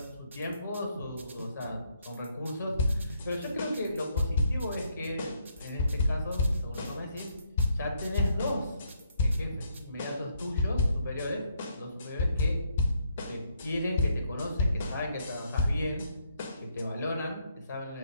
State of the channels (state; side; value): inverted; both; correlation -0.74